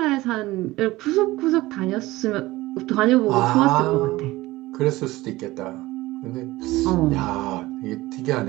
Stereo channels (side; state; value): left; quieter; 18.7 dB